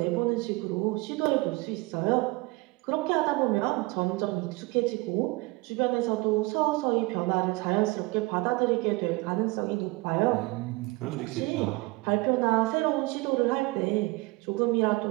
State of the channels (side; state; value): left; quieter; 24.0 dB